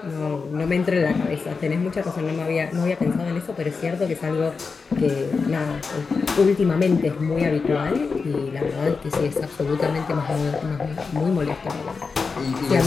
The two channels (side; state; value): right; quieter; 4.8 dB